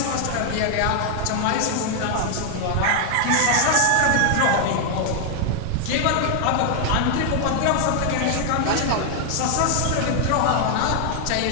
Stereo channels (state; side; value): different; both; correlation 0.00